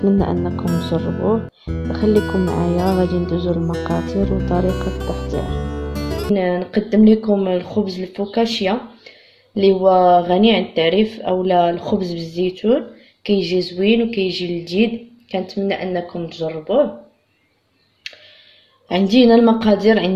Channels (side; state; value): both; identical; correlation 1.00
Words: أنكم تجربوه. خليكم معايا غادي ندوزو المقادير وطريقة التحضير. نقدم لكم الخبز الفوكاشيا اللي هو غني عن التعريف، اولا الخبز بالزيتون، كيجي زوين وكيجي لذيذ. كنتمنى انكم تجربوه. عندي هنا المقادير،